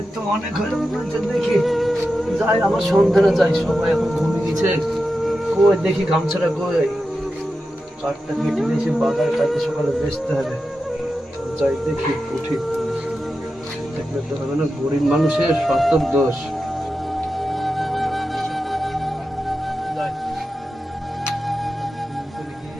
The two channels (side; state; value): both; normal; correlation 0.91